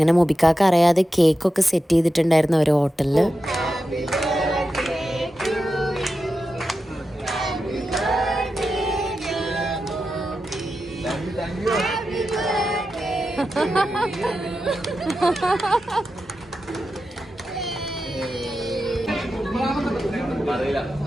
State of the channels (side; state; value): both; normal; correlation 0.90